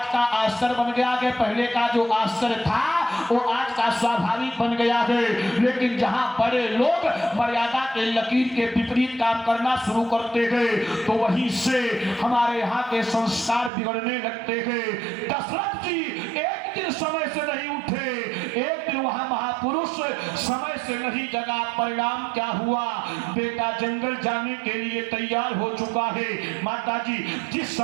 का आश्चर्य बन गया है, पहले का जो आश्चर्य था वो आज का स्वाभाविक बन गया है। लेकिन जहां बड़े लोग मर्यादा के लकीर के विपरीत काम करना शुरू करते हैं तो वहीं से हमारे यहाँ के संस्कार बिगड़ने लगते हैं। दशरथ जी एक दिन समय से नहीं उठे, एक दिन वहां महापुरुष समय से नहीं जगा, परिणाम क्या हुआ, बेटा जंगल जाने के लिए तैयार हो चुका है। माता जी जिस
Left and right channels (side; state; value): left; drops out; at 13.7 s